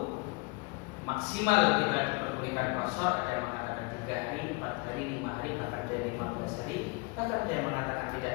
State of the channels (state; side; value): quieter; right; 28.2 dB